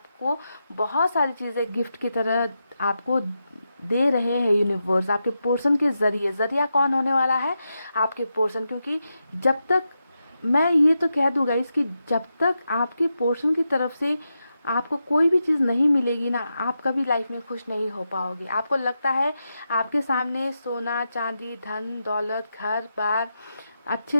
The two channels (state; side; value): inverted; both; correlation -0.87